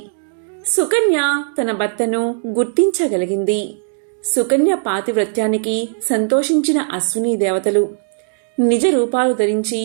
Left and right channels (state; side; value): silent; left; digital silence